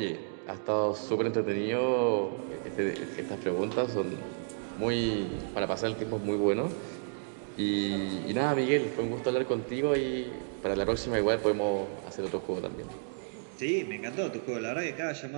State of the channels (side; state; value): left; silent; digital silence